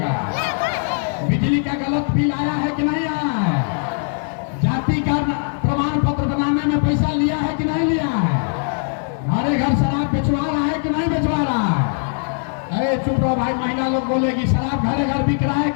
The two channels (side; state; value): right; silent; 59 dB below the other